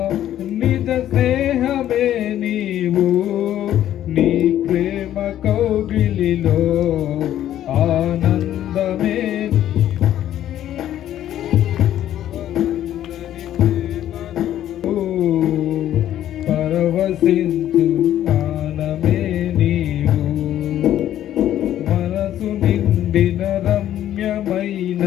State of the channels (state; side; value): quieter; right; 11.9 dB